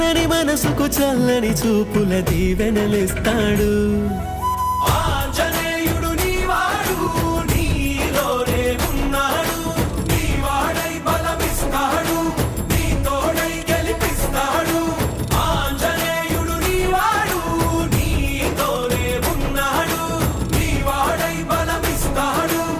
మనసుకు చల్లని చూపుల దీవెనలిస్తాడు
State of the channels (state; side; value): identical; both; correlation 1.00